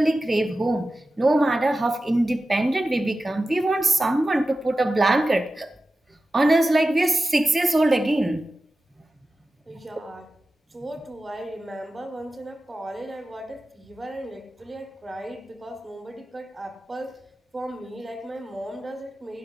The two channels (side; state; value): both; normal; correlation 0.94